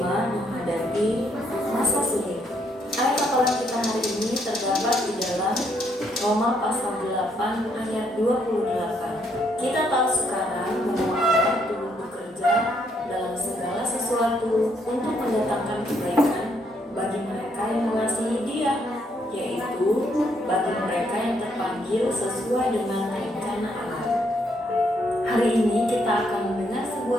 menghadapi masa sulit. Ayat hafalan kita hari ini terdapat di dalam Roma pasal 8 ayat 28. Kita tahu sekarang bahwa Allah turut bekerja dalam segala sesuatu berlaku untuk mendatangkan kebaikan bagi mereka yang mengasihi Dia, yaitu bagi mereka yang terpanggil sesuai dengan rencana Allah. Hari ini kita akan mendengar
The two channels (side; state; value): both; normal; correlation 0.72